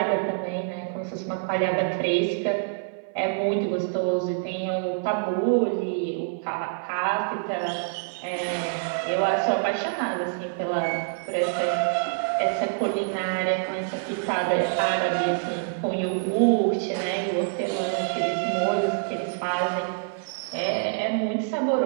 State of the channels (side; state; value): left; silent; 60 dB below the other